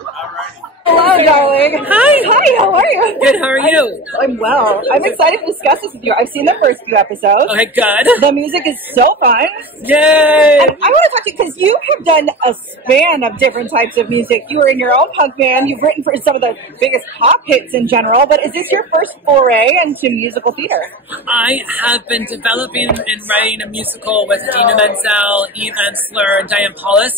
righty. Hello, darling. Hi, how are you? Good, how are you? I'm well. I'm excited to discuss this with you. I've seen the first few episodes. Okay, good. The music is so fun. Yay! And I want to talk to you because you have done a span of different types of music. You were in your own punk band. You've written for some of the biggest pop hits in general, but is this your first foray into musical theater? I have been developing and writing a musical with Dina Menzel, Eve Ensler, and Diane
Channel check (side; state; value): both; normal; correlation 0.29